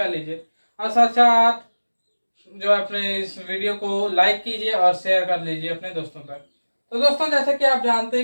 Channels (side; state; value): both; inverted; correlation -1.00